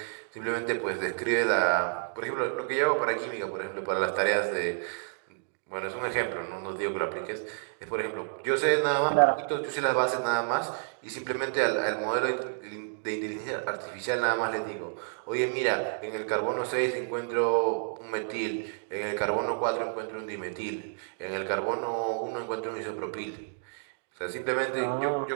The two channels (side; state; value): left; silent; digital silence